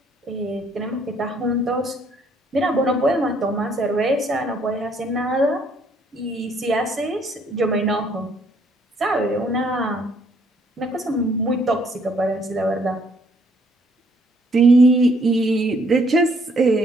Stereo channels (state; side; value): normal; both; correlation 0.66